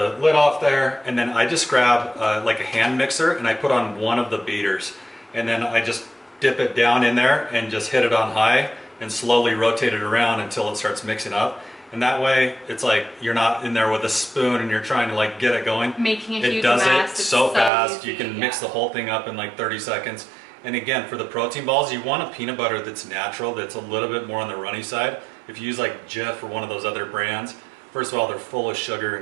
lid off there, and then I just grab like a hand mixer and I put on one of the beaters, and then I just dip it down in there and just hit it on high and slowly rotate it around until it starts mixing up. And that way, it's like you're not in there with a spoon and you're trying to like get it going. Making a huge It does mess. it so fast. Easy, you can mix the whole thing up in like 30 seconds. And again, for the protein balls, you want a peanut butter that's natural, that's a little bit more on the runny side. If you use like Jif or one of those other brands, first of all, they're full of sugar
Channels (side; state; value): left; drops out; at 17.7 s